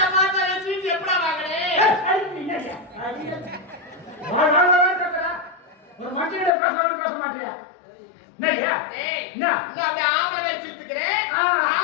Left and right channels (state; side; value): drops out; right; at 6.5 s